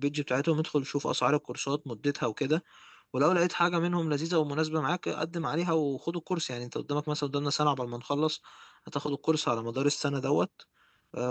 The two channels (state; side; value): identical; both; correlation 1.00